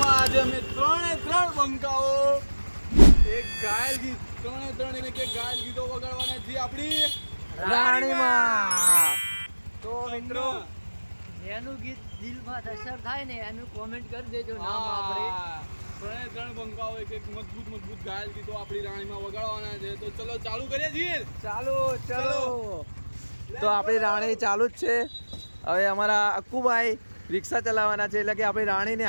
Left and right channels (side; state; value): both; inverted; correlation -1.00